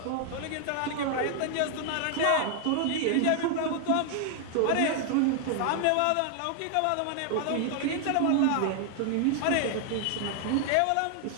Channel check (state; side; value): different; both; correlation 0.00